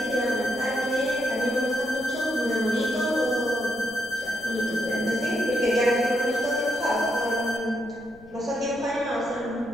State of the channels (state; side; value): noise; left; rumble, 23 dB below the sound